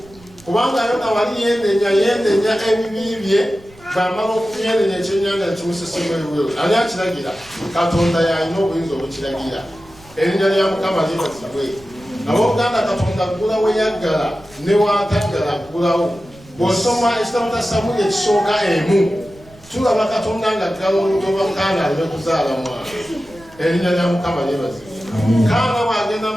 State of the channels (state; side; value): noise; right; rumble, 24 dB below the sound